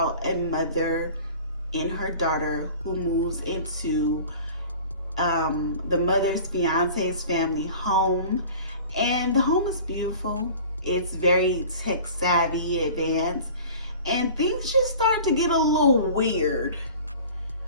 a mother and her daughter who moves into the mother's fiance's family home, and the home is beautiful. It's very tech savvy, advanced, and things just start to get a little weird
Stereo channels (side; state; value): both; inverted; correlation -0.42